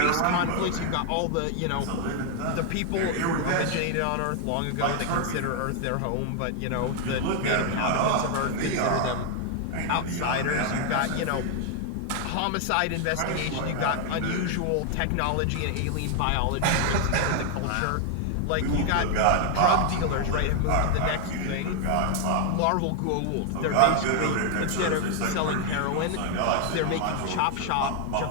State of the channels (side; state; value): both; different; correlation 0.00